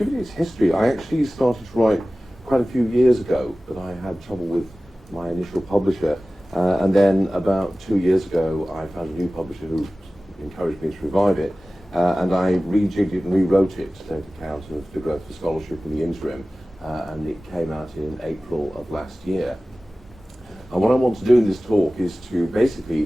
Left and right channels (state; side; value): normal; both; correlation 0.97